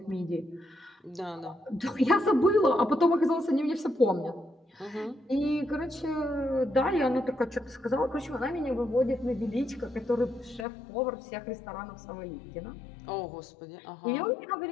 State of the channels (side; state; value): right; drops out; at 10.7 s